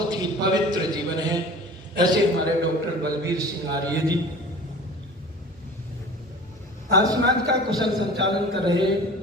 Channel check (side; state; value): both; normal; correlation 0.40